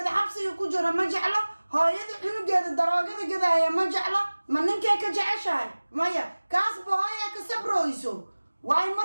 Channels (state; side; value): inverted; both; correlation -1.00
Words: xabsiga ku jira ma jeclo hooyada cunugeeda daroogada gadaaya ma jeclo ma ninkay ka jeceshahay maya kaasba hooyaa ka sabrooyso waayo